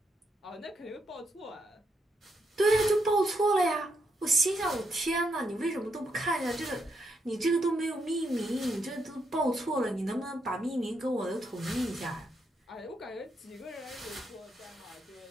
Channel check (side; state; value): both; normal; correlation 0.80